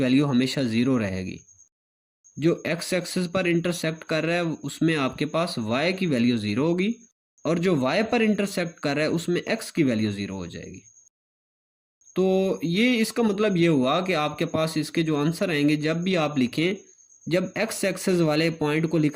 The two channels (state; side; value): identical; both; correlation 1.00